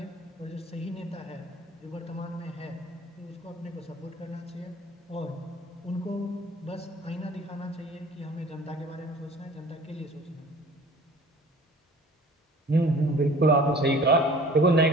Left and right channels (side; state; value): both; normal; correlation 0.47